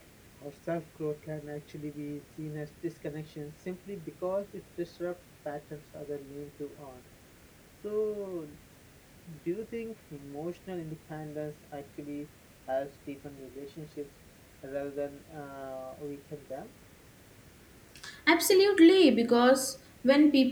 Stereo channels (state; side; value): identical; both; correlation 1.00